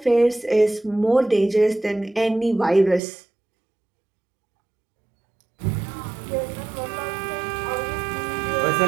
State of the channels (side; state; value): left; drops out; at 3.0 s